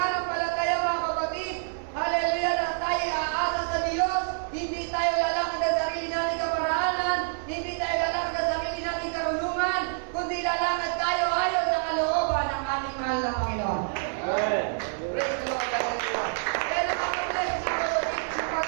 mga kapatid. Hallelujah, na tayo aasa sa Diyos. Hindi tayo lalakad sa sarili nating kaparalan. Hindi tayo lalakad sa sarili nating karunungan. Kundi lalakad tayo ayon sa kalooban ng ating mahal na Panginoon. Amen. Praise the Lord, hallelujah. Kaya nakapag-bless, mga kapatid, yung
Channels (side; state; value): left; silent; digital silence